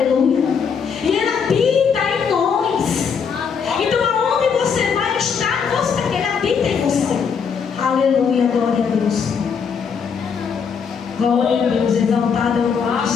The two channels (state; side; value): quieter; right; 6.4 dB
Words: E Ele habita em nós. Então aonde você vai estar, você, Ele habita em você. Aleluia, glória a Deus. Glória a Deus, exaltado é o nome do